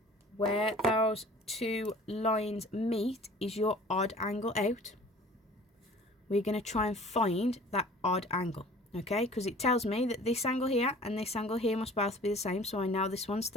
where those two lines meet is your odd angle out. We're going to try and find that odd angle, okay, because it tells me that this angle here and this angle here must both be the same. So I know this one's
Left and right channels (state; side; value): normal; both; correlation 0.47